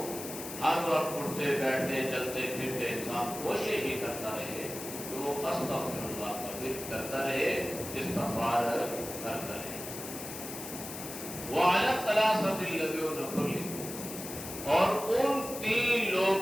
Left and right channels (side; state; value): left; noise; hiss, 9 dB below the sound